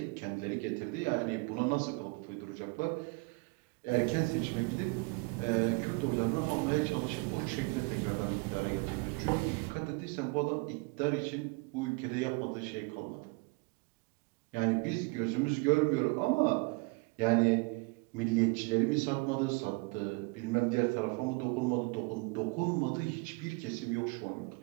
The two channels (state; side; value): quieter; left; 29.5 dB